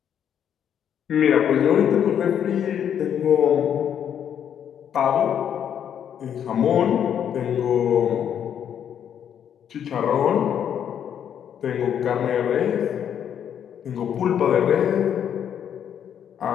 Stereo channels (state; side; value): quieter; right; 9.0 dB